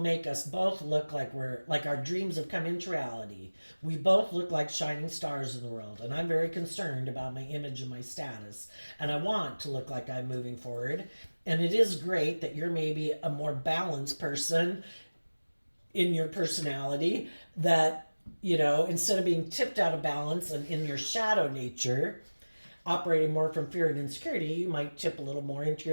us both look like our dreams have come into reality. We both look like shining stars in the world, and I'm very concerned about my image and my status, and I want to look like I'm moving forward. And it is great that you're maybe a more balanced person in your personality, that instead of being tipped out of balance and in your shadow nature, operating more from fear and insecurity, you might tip a little more into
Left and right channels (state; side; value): inverted; both; correlation -1.00